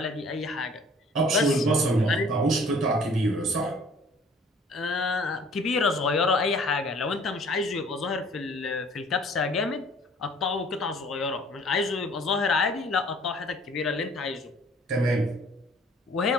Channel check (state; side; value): normal; both; correlation 0.54